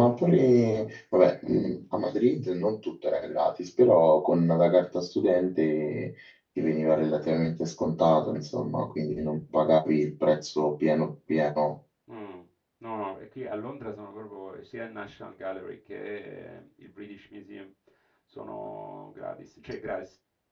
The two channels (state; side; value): identical; both; correlation 1.00